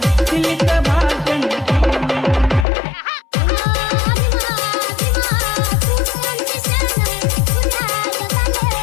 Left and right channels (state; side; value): drops out; right; at 2.7 s